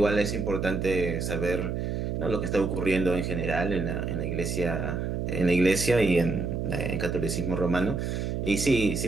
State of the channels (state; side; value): noise; right; hum, 2 dB below the sound